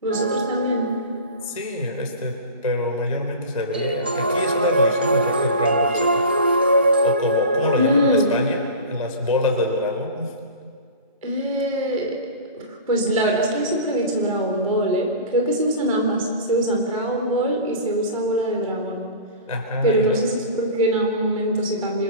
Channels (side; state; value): both; inverted; correlation -0.35